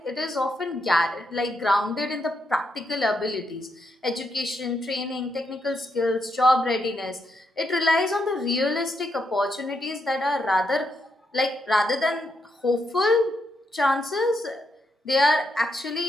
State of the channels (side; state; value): both; normal; correlation 0.80